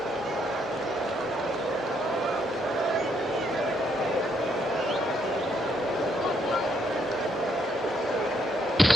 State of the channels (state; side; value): normal; both; correlation 0.73